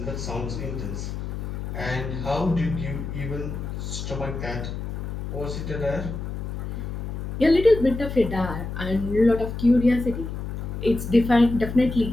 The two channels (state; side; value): noise; left; hum, 6 dB below the sound